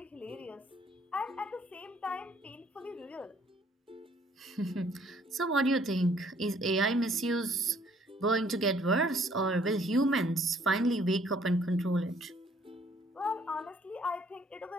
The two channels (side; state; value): both; normal; correlation 0.62